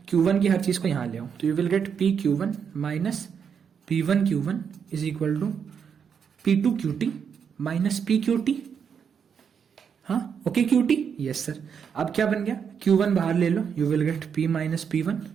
Q1 की हर चीज को यहां ले आओ, तो you will get PQ1 minus P1 Q1 is equal to P2 QT minus PQT। हाँ ओके QT, यस सर। अब क्या बन गया, Q1 बाहर ले लो, you will get P minus P1,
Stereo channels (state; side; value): quieter; left; 7.1 dB